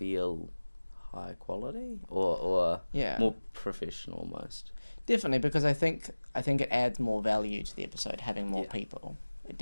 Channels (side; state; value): both; inverted; correlation -1.00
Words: high quality or Yeah, more professional almost. definitely, because I think it adds more value to the episode having more Yeah. people. It